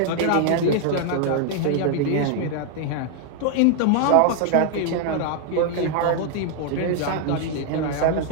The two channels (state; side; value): different; both; correlation 0.00